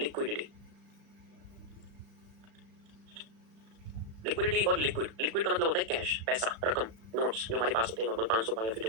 लिक्विडिटी और लिक्विड, लिक्विड का मतलब होता है कैश, पैसा, रकम, नोट्स जो हमारे पास होते हैं, नॉर्मल 500 का या फिर जो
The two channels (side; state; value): left; late; 36 ms